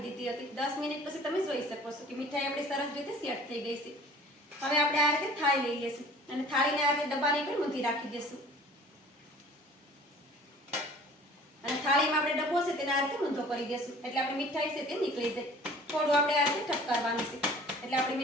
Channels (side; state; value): both; normal; correlation 0.48